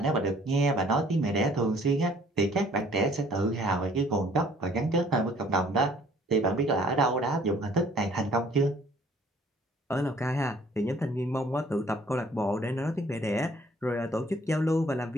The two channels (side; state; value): both; normal; correlation 0.57